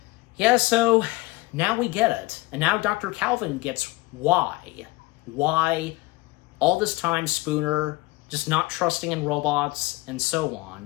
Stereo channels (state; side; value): quieter; right; 21.6 dB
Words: now we get it. And now Dr. Calvin gets why all this time Spooner just not trusting in robots and so